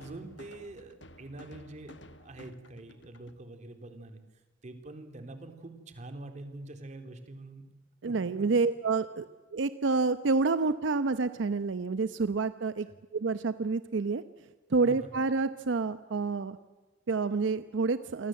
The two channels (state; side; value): quieter; left; 3.7 dB